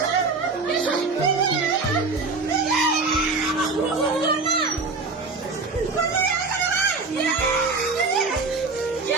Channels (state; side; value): quieter; left; 4.0 dB